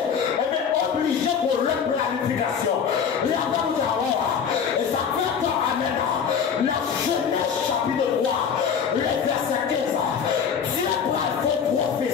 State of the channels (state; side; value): quieter; right; 7.1 dB